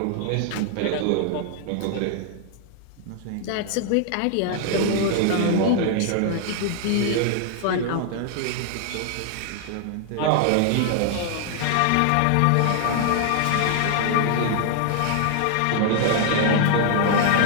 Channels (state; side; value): different; both; correlation 0.00